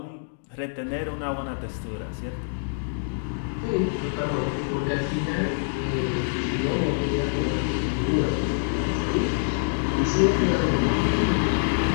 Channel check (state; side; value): silent; right; digital silence